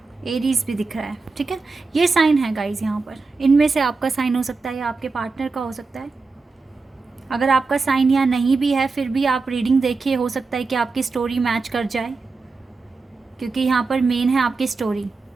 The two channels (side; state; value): left; quieter; 4.1 dB